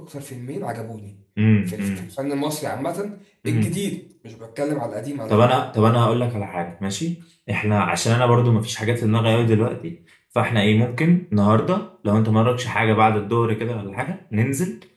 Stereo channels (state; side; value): identical; both; correlation 1.00